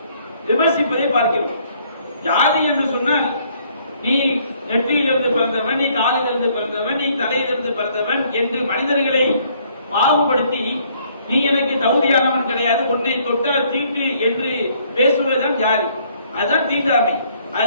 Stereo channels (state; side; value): inverted; both; correlation -0.64